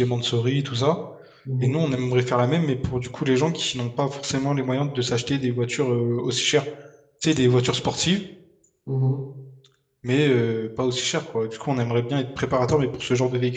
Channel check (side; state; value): both; identical; correlation 1.00